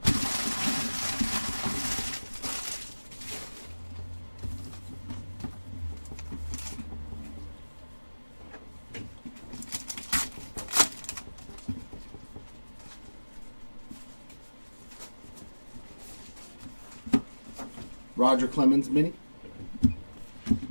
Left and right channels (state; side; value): inverted; both; correlation -1.00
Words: Roger Clemens mini.